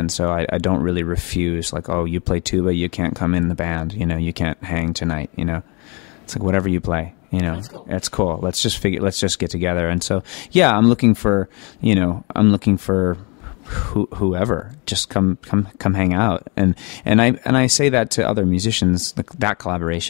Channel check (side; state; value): right; quieter; 31.4 dB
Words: so I don't really refuse, like, oh, you play tuba, you can't come in the band, you can't hang tonight, It's like whatever you play, That's cool. That's cool. Let's just get together. And so, yeah, I'm looking for whoever, just come hang out, and I say that to other musicians, that